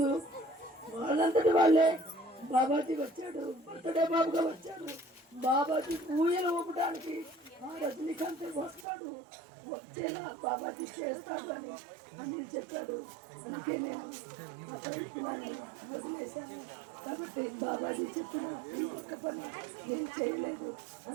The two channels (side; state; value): left; drops out; at 8.8 s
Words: వాళ్ళంతటి వాళ్ళే బాబాజీ వచ్చాడు, బర్త్డే బాబుగా వచ్చాడు. బాబాజీ ఊయలు ఊపడానికి ఆ రజనీకాంత్ వస్తాడు, వచ్చేలా బాబాజీ చేస్తాడు అని చెప్పాడు. అందుకే నేను ఆ ప్రయత్నాన్ని వదిలేశాను. కాబట్టి బాబాజీ చెప్పిన ఈ ఒక్క పని నేను చేయలేదు.